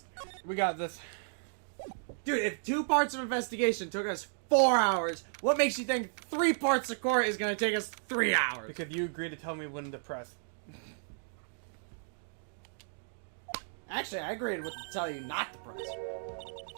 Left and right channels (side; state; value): left; silent; digital silence